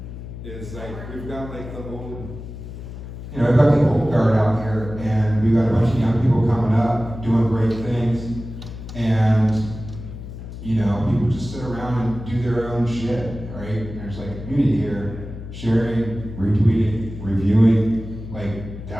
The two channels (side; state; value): left; noise; hum, 11 dB below the sound